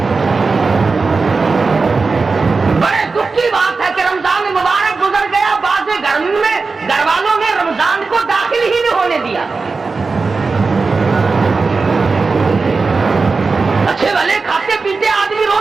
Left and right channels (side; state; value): left; quieter; 4.2 dB